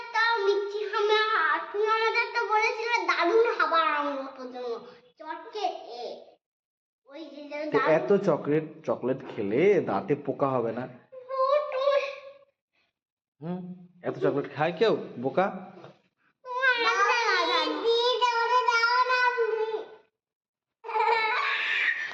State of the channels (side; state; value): both; identical; correlation 1.00